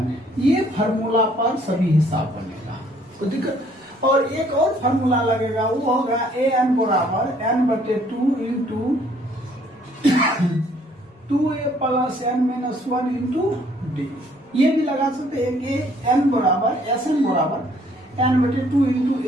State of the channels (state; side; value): normal; both; correlation 0.62